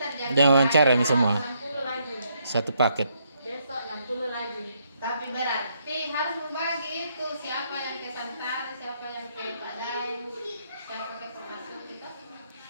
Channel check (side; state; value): both; inverted; correlation -0.74